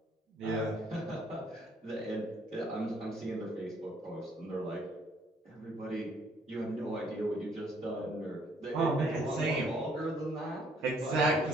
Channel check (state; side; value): normal; both; correlation 0.64